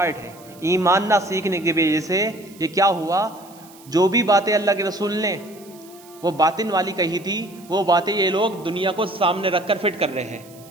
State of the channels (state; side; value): noise; right; hiss, 23 dB below the sound